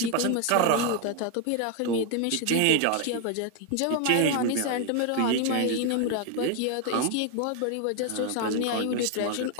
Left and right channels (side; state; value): both; different; correlation 0.01